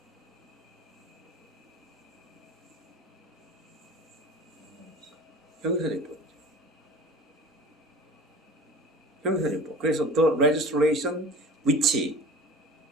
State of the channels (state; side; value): normal; both; correlation 0.40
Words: 형용사적법. 형용사적법. 그래서 the legislation which